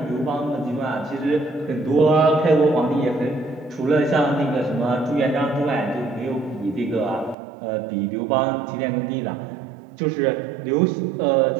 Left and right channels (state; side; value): drops out; left; at 7.4 s